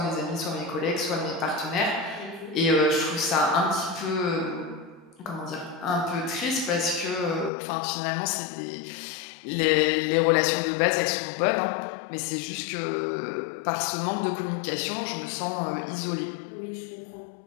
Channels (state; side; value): drops out; right; at 7.5 s